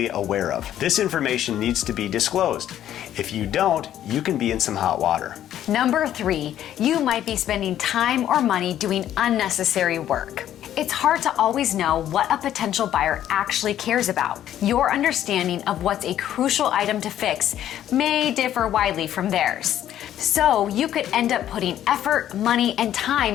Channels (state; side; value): quieter; right; 11.5 dB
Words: aware of. This information needs to be disclosed. If you don't, you can be in some hot water. Number 3, you might be spending time or money doing unnecessary work. It's hard to always know what a potential buyer actually cares about. Your understanding of what's a crucial item to fix may differ widely from theirs. So you could end up putting effort, money, and